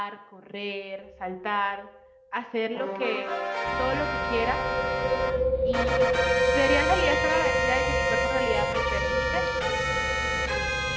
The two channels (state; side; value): identical; both; correlation 1.00